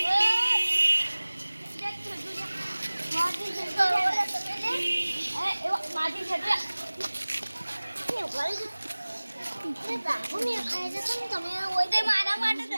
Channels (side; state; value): both; inverted; correlation -1.00